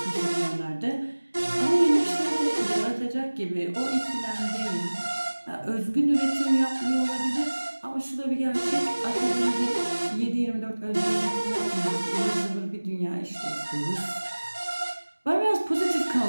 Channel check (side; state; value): both; inverted; correlation -1.00